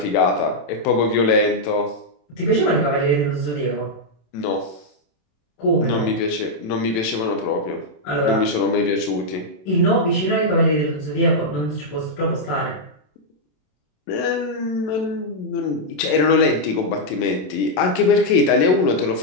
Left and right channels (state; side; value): late; right; 27 ms